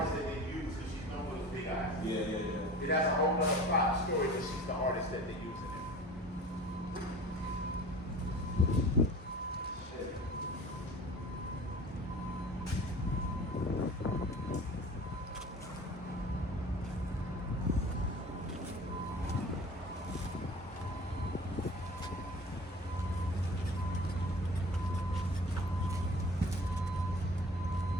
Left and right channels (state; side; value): normal; both; correlation 0.41